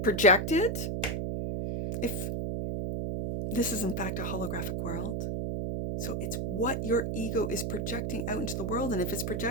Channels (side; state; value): right; noise; hum, 1 dB below the sound